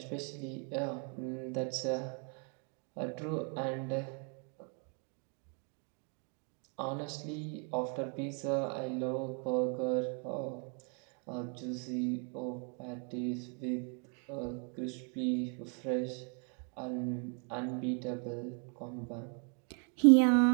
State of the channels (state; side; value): quieter; left; 39.2 dB